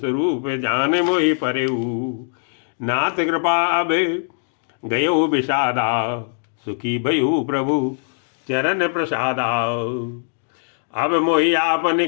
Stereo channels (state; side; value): silent; right; digital silence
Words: जान मोहि परेऊ। नाथ कृपा अब गयो विषादा, सुखी भयु प्रभु चरण प्रसादा। अब मोहि आपन